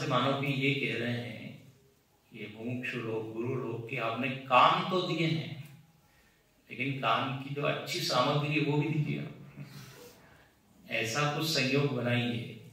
मानो कि ये कह रहे हैं, ये मुमुक्षु लोग, गुरु लोग, कि आपने कान तो दिए हैं, लेकिन कान की जो अच्छी सामग्री है वो भी दीजिए। ऐसा कुछ संयोग बनाइए,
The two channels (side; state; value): both; identical; correlation 1.00